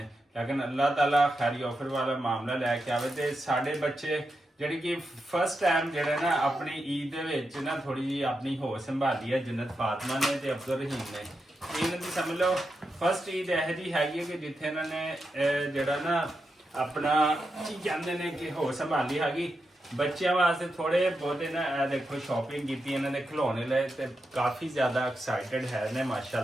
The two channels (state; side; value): normal; both; correlation 0.87